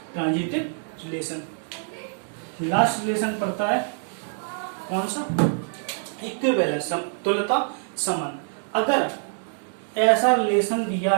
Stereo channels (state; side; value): silent; left; 62 dB below the other